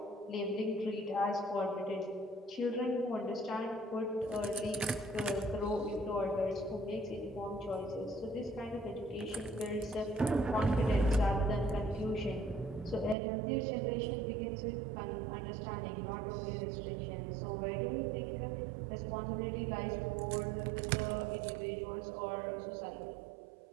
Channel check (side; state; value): left; drops out; at 13.2 s